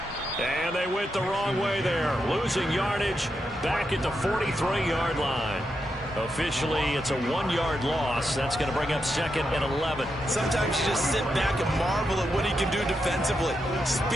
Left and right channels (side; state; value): both; normal; correlation 0.85